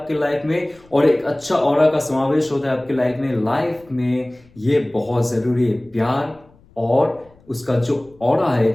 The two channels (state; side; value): noise; left; rumble, 28 dB below the sound